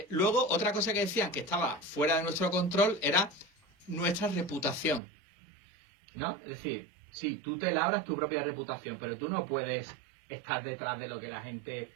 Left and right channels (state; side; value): drops out; left; at 5.0 s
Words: Luego, otra cosa que decían que estaba fuera de nuestro control era nuestra reputación, ¿no? Es decir, sí, tú te labras tu propia reputación, pero tú no puedes estar detrás de lo que la gente